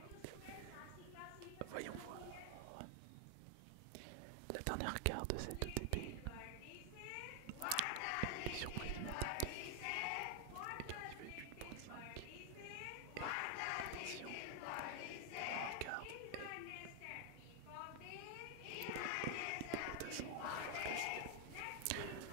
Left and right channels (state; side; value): different; both; correlation 0.00